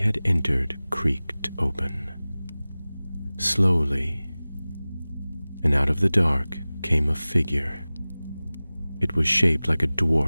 entered creaked open. Slowly, and out of the dark came a figure. It was shaped like a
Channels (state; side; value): inverted; both; correlation -0.98